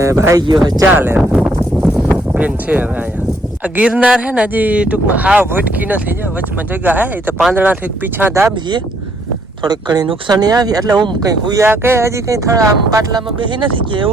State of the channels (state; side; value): normal; both; correlation 0.69